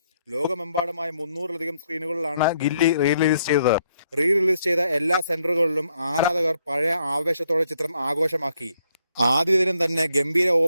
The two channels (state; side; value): inverted; both; correlation -0.73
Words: ലോകമെമ്പാടുമായി 300-ലധികം സ്ക്രീനുകളിലാണ് ഗില്ലി റിലീസ് ചെയ്തത്. റിലീസ് ചെയ്ത എല്ലാ സെന്ററുകളിലും ആരാധകർ പഴയ ആവേശത്തോടെ ചിത്രം ആഘോഷമാക്കി. ആദ്യ ദിനം തന്നെ ഗംഭീര